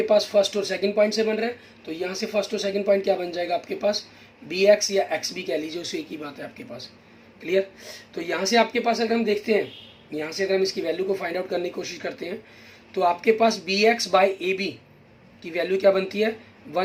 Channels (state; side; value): identical; both; correlation 1.00